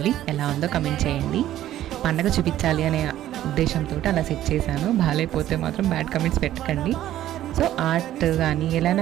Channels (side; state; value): left; quieter; 13.0 dB